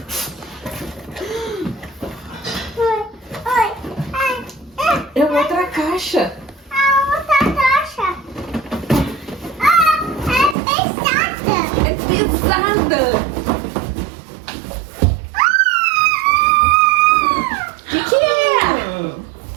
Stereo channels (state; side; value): drops out; left; at 10.6 s